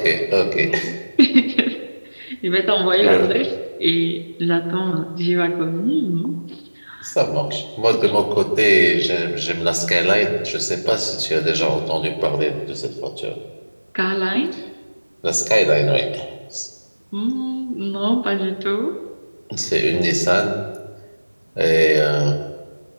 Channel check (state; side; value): inverted; both; correlation -1.00